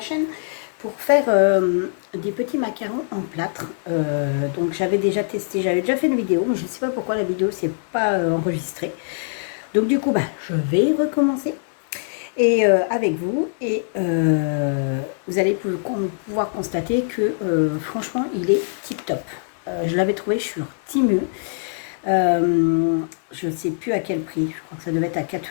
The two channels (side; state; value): right; silent; digital silence